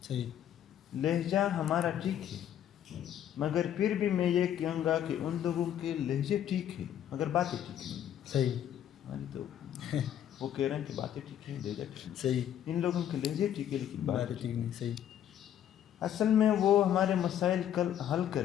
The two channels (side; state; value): right; quieter; 10.4 dB